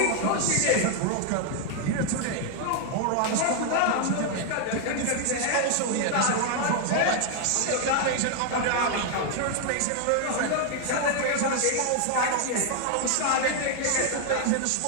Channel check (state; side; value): different; both; correlation 0.00